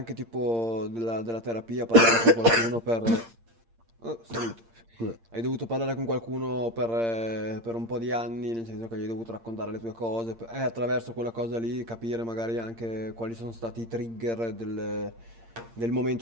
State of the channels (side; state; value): left; late; 8.7 ms